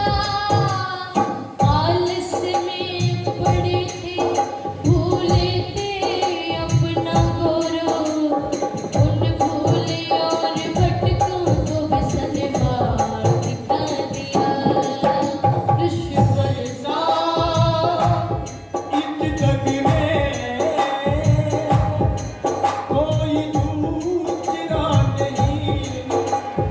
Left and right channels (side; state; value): both; identical; correlation 1.00